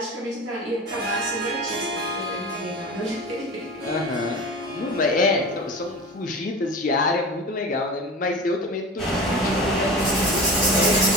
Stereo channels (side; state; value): both; normal; correlation 0.32